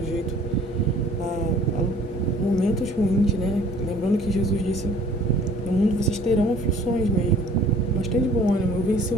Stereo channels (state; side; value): normal; both; correlation 0.52